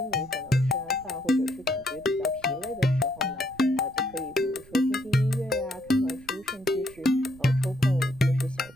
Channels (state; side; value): noise; right; rumble, 24 dB below the sound